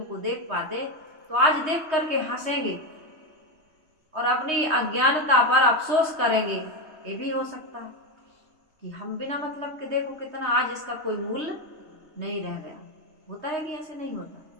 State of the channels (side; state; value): left; late; 3.2 ms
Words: को देख पाते, तो आज देख करके हंसेंगे और अपनी अज्ञानता पर अफसोस करेंगे। ये भी हो सकता है कि हम बिना मतलब के, देखो कितना आज इसका कोई मूल्य नहीं रह गया। होता है कि ऐसे नहीं होता?